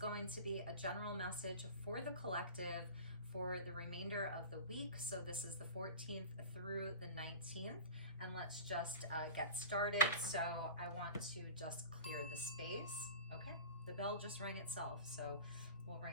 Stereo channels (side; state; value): both; inverted; correlation -0.35